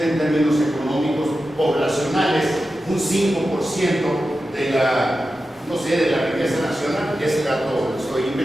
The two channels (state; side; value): normal; both; correlation 0.92